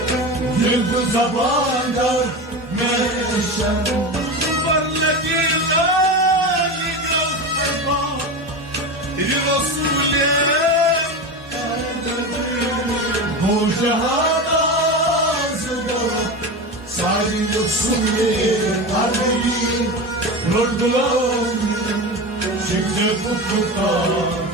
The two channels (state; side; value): normal; both; correlation 0.23